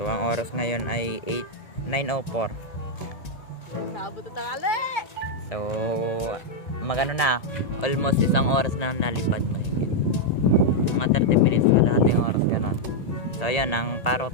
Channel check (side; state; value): right; late; 1.9 ms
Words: ang oras ngayon ay 9:04. Nakabot na tangali. So magano na. Almost isang oras na nalipad mahigit. Mga 30 minutes na lahat yung oras ganun. So ayan ang parot.